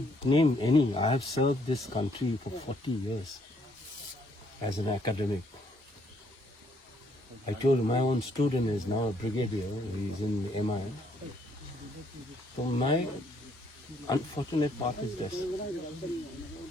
name any. I have served this country for 40 years as an academic. I told you, my own student is now a brigadier. He's in MI. So my unfortunate part is this.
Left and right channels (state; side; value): normal; both; correlation 0.68